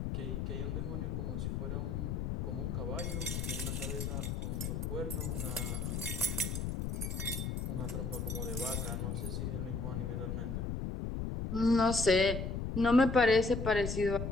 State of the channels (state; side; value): noise; left; rumble, 2 dB below the sound